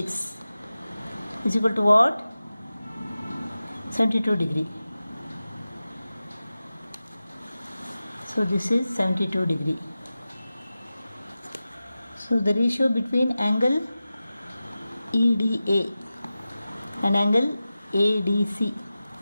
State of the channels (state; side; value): inverted; both; correlation -0.95